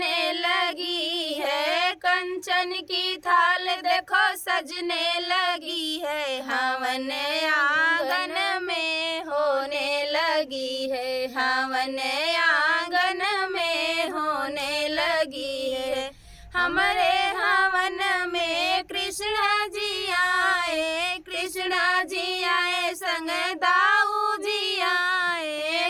लगी है, कंचन की थाल देखो सजने लगी है, हवन आंगन में होने लगी है, हवन आंगन में होने लगी है। हमारे हवन में कृष्ण जी आए, कृष्ण जी आए संग दाऊ जी आए।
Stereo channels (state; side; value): identical; both; correlation 1.00